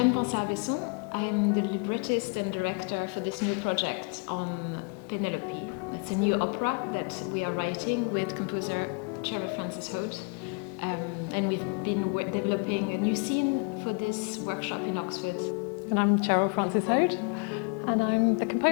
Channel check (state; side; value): quieter; right; 33.8 dB